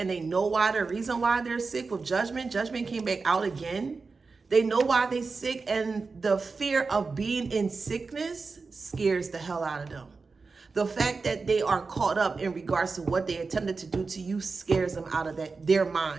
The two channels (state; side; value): quieter; left; 4.3 dB